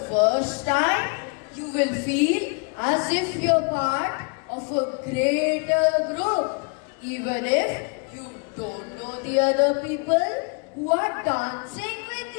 first time, you will feel as if you're part of a greater group, even if you don't know the other people who are dancing with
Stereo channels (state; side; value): quieter; right; 35.3 dB